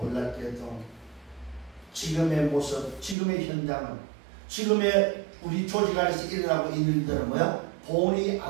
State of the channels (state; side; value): drops out; left; at 3.2 s